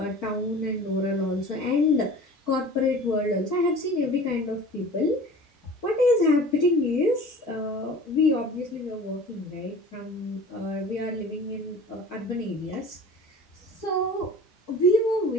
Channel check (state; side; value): normal; both; correlation 0.42